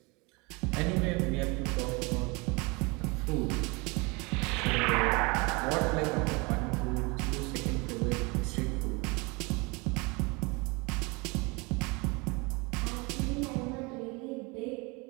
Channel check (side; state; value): left; quieter; 27.5 dB